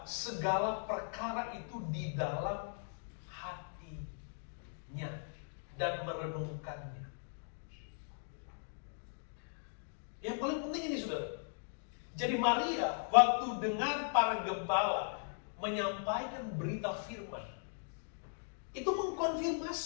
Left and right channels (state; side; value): silent; right; digital silence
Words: segala perkara itu di dalam hatinya dan merenungkannya. Yang paling penting ini, saudara. Jadi Maria waktu dengar para gembala menyampaikan berita firman, itu